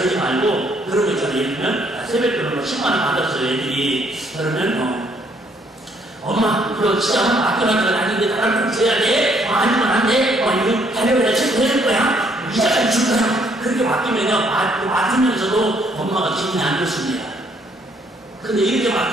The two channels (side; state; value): both; normal; correlation 0.67